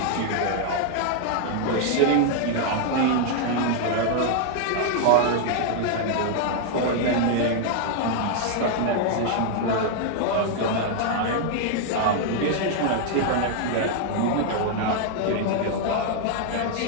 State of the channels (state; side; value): different; both; correlation 0.00